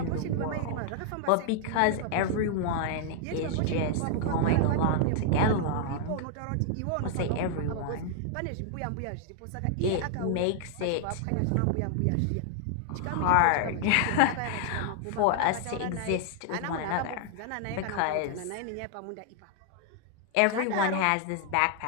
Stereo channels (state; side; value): different; both; correlation 0.00